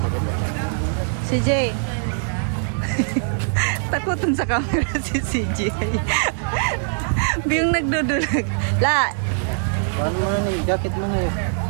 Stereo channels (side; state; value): left; silent; digital silence